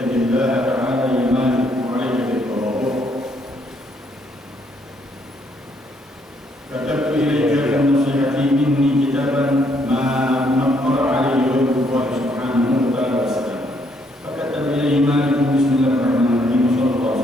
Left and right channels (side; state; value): both; normal; correlation 0.71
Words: الله تعالى يا مالك وعليك بالتواضع. كتبت إليك بالنصيحة مني كتابا ما نقر عليه غير الله سبحانه وتعالى وسلم. فكتب إليه مالك: بسم الله الرحمن الرحيم، صلى الله